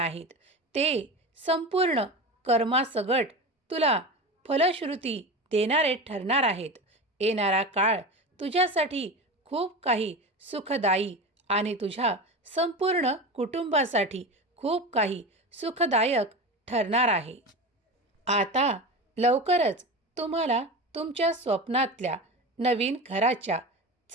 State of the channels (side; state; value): both; normal; correlation 0.26